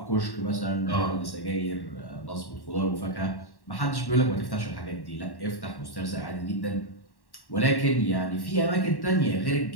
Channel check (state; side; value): late; right; 1.1 ms